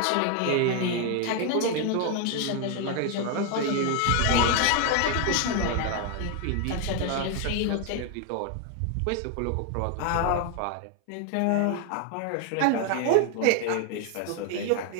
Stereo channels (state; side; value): different; both; correlation 0.01